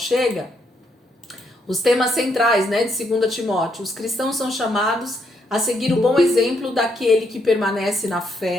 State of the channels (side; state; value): both; normal; correlation 0.75